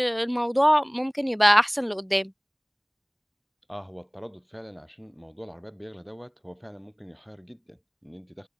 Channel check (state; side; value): identical; both; correlation 1.00